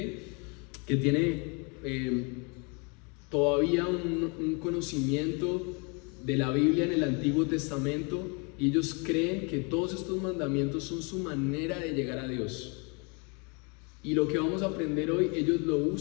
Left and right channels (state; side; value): quieter; right; 33.0 dB